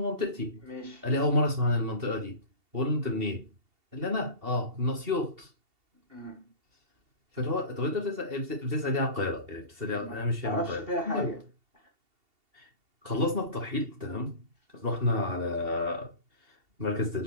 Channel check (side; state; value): left; late; 2.7 ms